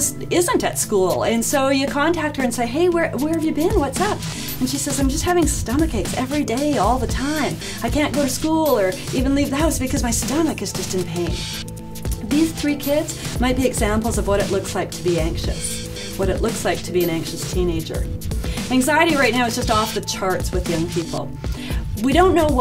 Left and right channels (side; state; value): both; identical; correlation 1.00